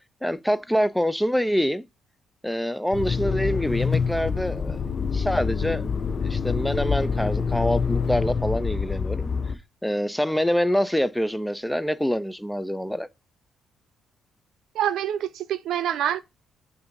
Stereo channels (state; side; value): normal; both; correlation 0.89